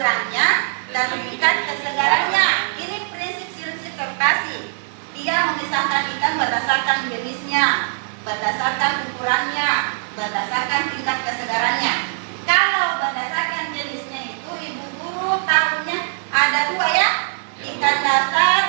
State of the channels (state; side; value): silent; left; digital silence